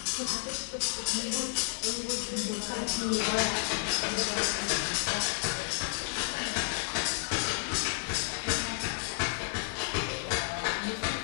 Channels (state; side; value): silent; right; digital silence